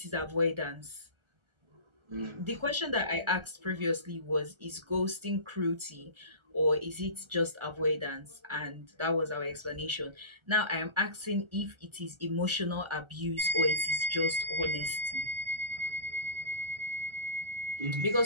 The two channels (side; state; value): left; late; 1.3 ms